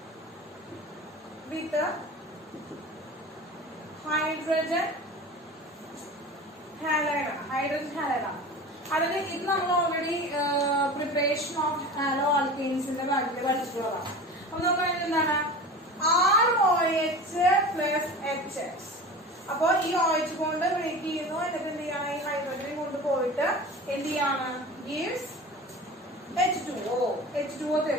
വിത്ത് ഹൈഡ്രജൻ ഹാലൈഡ് ആണ്. അതായത് ഇത് നമ്മൾ ഓൾറെഡി പ്രിപ്പറേഷൻ ഓഫ് ഹാലോ ആൽക്കെയിൻസിന്റെ ഭാഗത്തിൽ പഠിച്ചിട്ടുള്ളതാണ്. അപ്പൊ നമുക്ക് എന്താണ് ROH പ്ലസ് HX. അപ്പൊ ഈ OH കൊണ്ട് ബ്രേക്ക് ചെയ്യുന്നു. എന്നിട്ട് എന്ത് ചെയ്യാണ് ഈ ഹൈഡ്രജൻ കൊണ്ട് പോയിട്ട് എന്ത് ചെയ്യാണ് ഗീവ്സ് H2O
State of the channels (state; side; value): normal; both; correlation 0.34